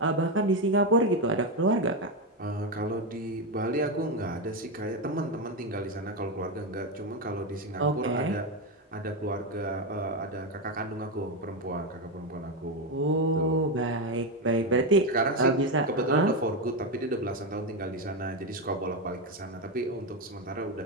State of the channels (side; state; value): both; normal; correlation 0.09